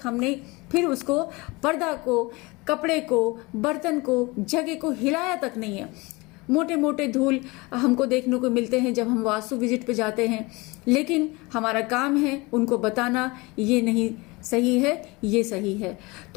हमने फिर उसको, पर्दा को, कपड़े को, बर्तन को, जगह को हिलाया तक नहीं है। मोटे मोटे धूल हमको देखने को मिलते हैं जब हम वास्तु विजिट पे जाते हैं, लेकिन हमारा काम है उनको बताना ये नहीं सही है, ये सही है।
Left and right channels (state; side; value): quieter; right; 24.3 dB